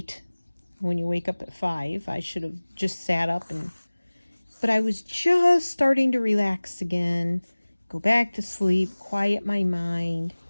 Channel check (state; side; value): inverted; both; correlation -1.00